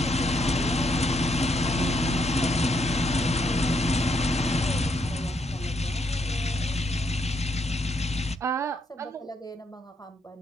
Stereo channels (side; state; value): both; normal; correlation 0.75